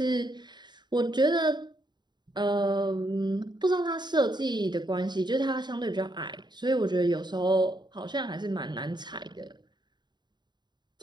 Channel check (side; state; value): left; late; 0.21 ms